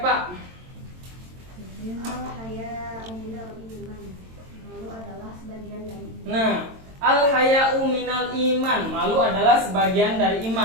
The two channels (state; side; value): late; left; 22 ms